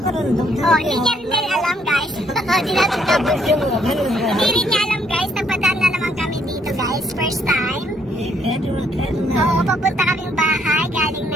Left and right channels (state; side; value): normal; both; correlation 0.69